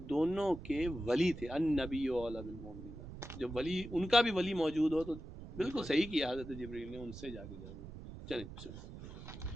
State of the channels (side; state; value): right; noise; rumble, 12 dB below the sound